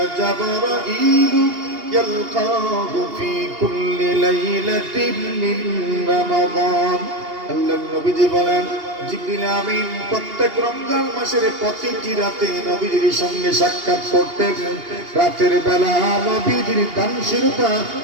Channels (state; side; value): late; left; 2.8 ms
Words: جبرائيل يلقاه في كل ليلة من رمضان। আল্লাহর নবীজি বলেন, জিবরিল আমিন প্রত্যেক রমজান মাসের প্রতিটি রাতে নবীজির সঙ্গে সাক্ষাৎ করতেন। রাতের বেলা নবীজির দানশীলতা